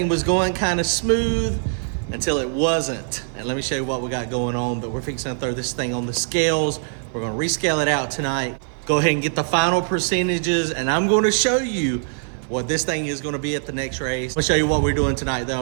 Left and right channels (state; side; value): silent; left; 62 dB below the other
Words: was going kind of smooth until it wasn't. And let me show you what we got going on. But we're fixing to throw this thing on the scales. We're going to rescale it out tonight. Go ahead and get the final percentages, and I'm going to show you what this thing is going to be at the next race. I'm going to show you what we're doing tonight, though.